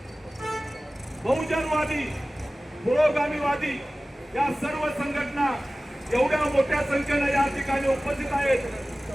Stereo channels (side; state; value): both; normal; correlation 0.97